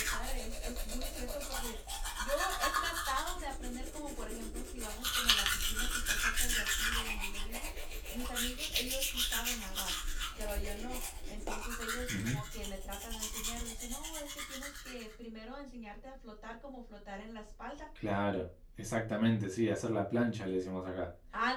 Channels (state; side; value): identical; both; correlation 1.00